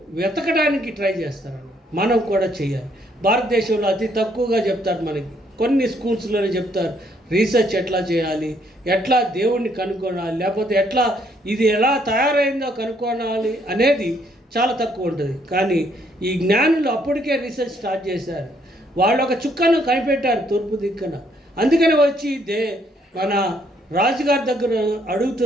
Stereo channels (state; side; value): normal; both; correlation 0.69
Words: వెతకడానికి ట్రై చేస్తారు. మనం కూడా చేయాలి. భారతదేశంలో అతి తక్కువగా చెప్తారు మనకి కొన్ని స్కూల్స్లోనే చెప్తారు రీసెర్చ్ ఎట్లా చేయాలి, ఎట్లా దేవుణ్ణి కనుక్కోవాలి, లేకపోతే ఎట్లా ఇది ఎలా తయారైందో కనుక్కోవాలి అనేది చాలా తక్కువ ఉంటుంది. కానీ ఈ జ్ఞానులు అప్పటికే రీసెర్చ్ స్టార్ట్ చేశారు. వాళ్ళు ఒక చుక్కను కనిపెట్టారు తూర్పు దిక్కున. అందుకని వచ్చి మన రాజుగారి దగ్గర